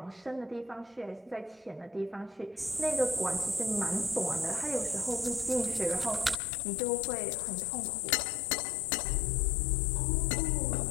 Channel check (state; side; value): drops out; right; at 6.4 s